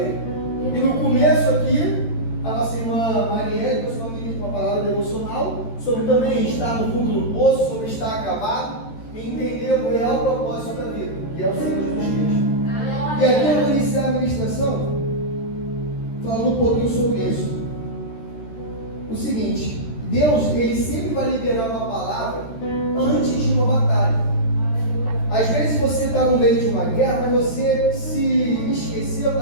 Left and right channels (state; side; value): late; right; 13 ms